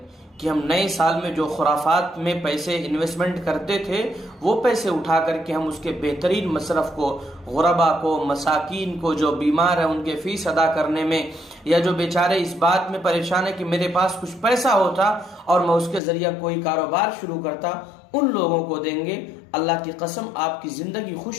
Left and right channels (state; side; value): drops out; right; at 16.0 s